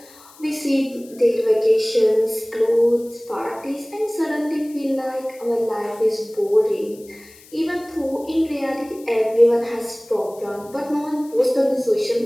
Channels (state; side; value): noise; left; hiss, 24 dB below the sound